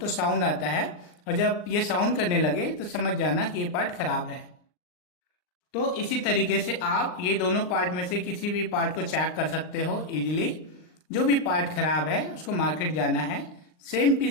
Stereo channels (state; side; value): late; right; 39 ms